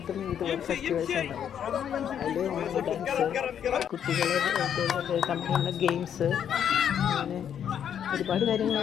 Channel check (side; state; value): right; quieter; 8.9 dB